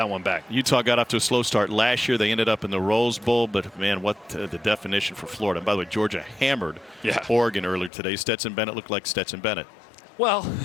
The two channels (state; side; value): drops out; right; at 7.9 s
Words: one back. Utah got off to a slow start last year. They ended up in the Rose Bowl, but man, what the definition for Florida. And by the way, Georgia hammered Oregon earlier today. Stetson Bennett looked like Stetson Bennett. Well,